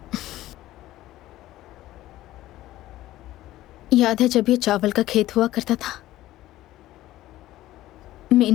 याद है जब ये चावल का खेत हुआ करता था?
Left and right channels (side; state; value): right; quieter; 15.3 dB